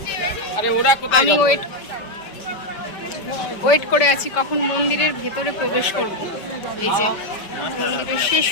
আমি ওয়েট করে আছি কখন মন্দিরের ভেতরে প্রবেশ করব। এই যে মন্দিরের শেষ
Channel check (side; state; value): right; late; 5.2 ms